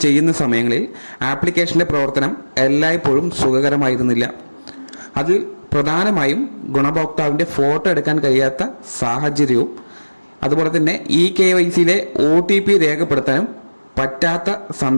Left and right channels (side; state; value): both; inverted; correlation -1.00